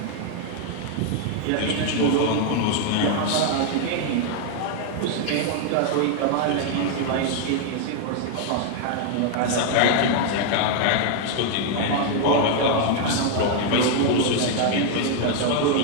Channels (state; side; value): different; both; correlation 0.00